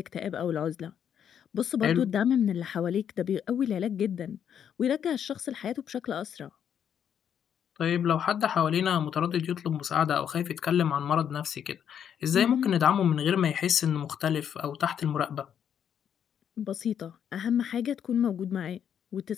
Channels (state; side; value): quieter; right; 8.7 dB